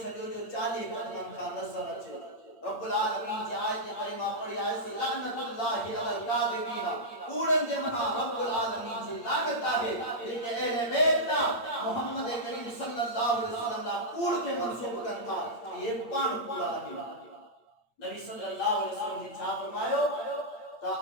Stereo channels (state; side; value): late; right; 8.7 ms